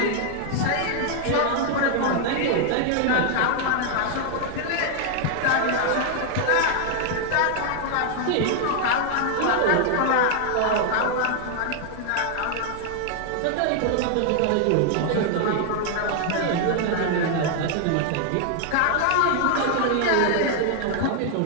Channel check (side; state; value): both; different; correlation 0.00